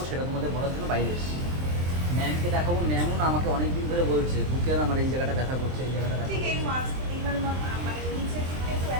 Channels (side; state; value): left; late; 23 ms